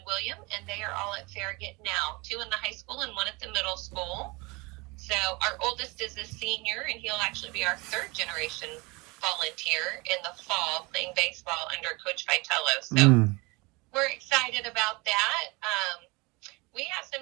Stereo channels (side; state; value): left; quieter; 25.8 dB